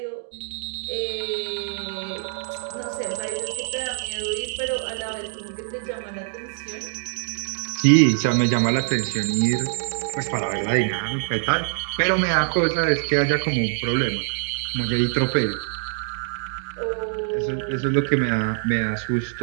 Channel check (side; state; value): left; silent; digital silence